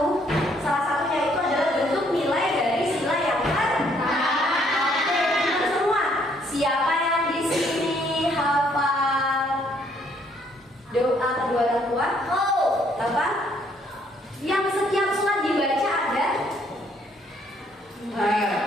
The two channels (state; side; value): normal; both; correlation 0.67